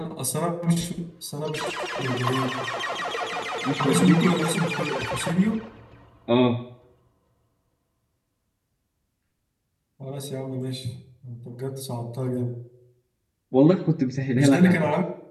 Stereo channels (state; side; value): identical; both; correlation 1.00